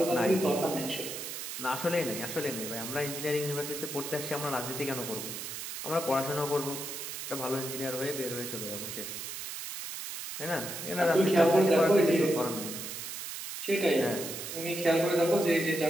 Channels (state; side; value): noise; right; hiss, 7 dB below the sound